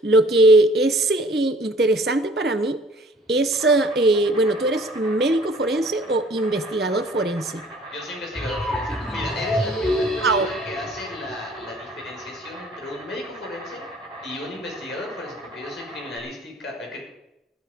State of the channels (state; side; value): normal; both; correlation 0.54